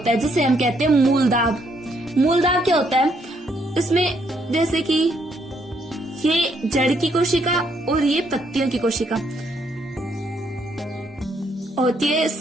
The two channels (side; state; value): both; normal; correlation 0.72